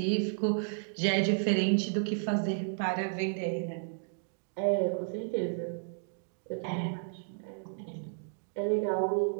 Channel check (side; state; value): left; silent; digital silence